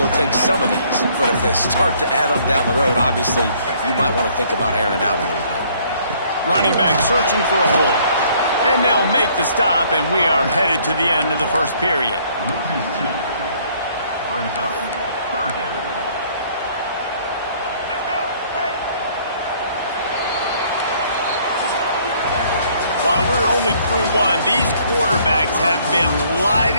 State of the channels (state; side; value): inverted; both; correlation -0.61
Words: take some of these. But if they start to add up down the road, obviously you might want to think about airing it out a little bit. Running back searching for a hole. And they'll make the stop, and we are headed to the end of the first period. While we're only through one, these quarterbacks have been